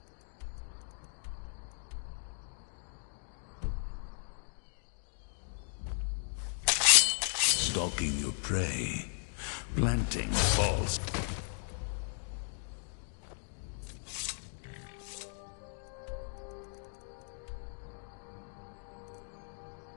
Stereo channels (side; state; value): right; silent; digital silence